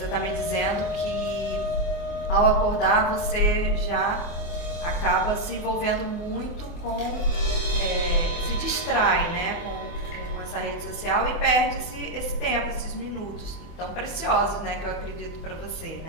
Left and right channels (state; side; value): late; right; 24 ms